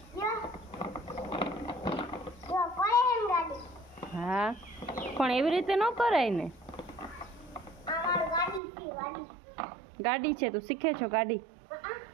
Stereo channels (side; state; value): left; drops out; at 8.6 s